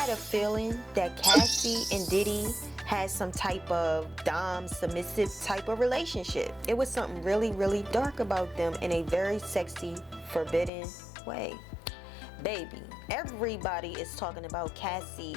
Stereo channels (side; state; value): right; drops out; at 10.7 s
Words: a feeling that Cassie and Diddy had some type of dom submissive type of relationship. It was something really, really dark about them in a very sexy, forbidden way. Baby, everybody is talking about